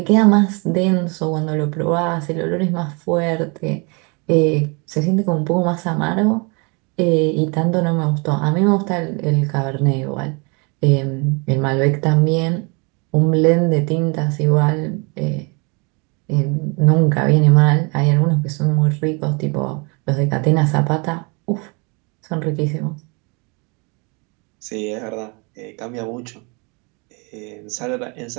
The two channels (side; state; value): left; quieter; 31.6 dB